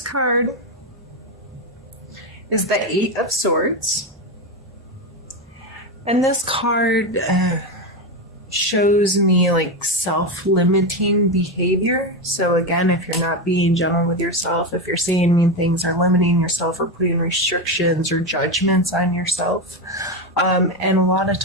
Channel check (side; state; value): both; normal; correlation 0.13